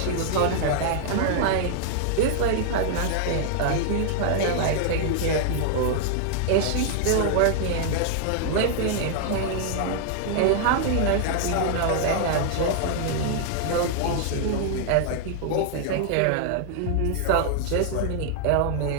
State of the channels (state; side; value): different; both; correlation 0.00